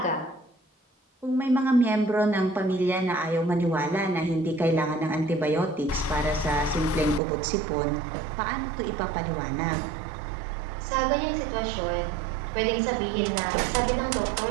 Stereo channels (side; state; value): left; drops out; at 7.2 s